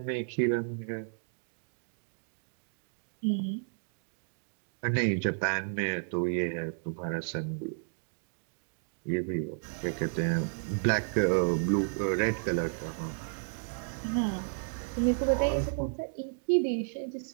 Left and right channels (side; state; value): left; silent; digital silence